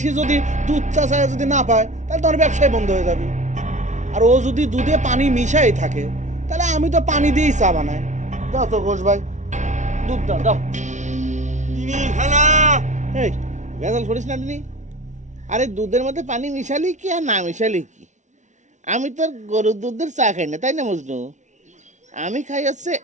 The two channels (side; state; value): left; late; 0.35 ms